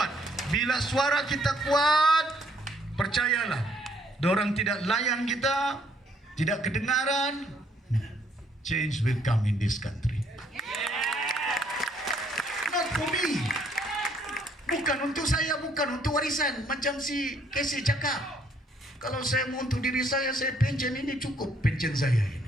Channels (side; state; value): both; normal; correlation 0.67